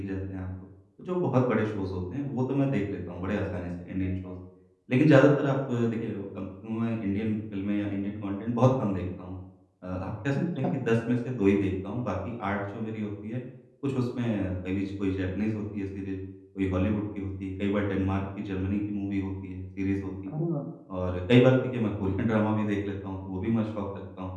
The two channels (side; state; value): both; identical; correlation 1.00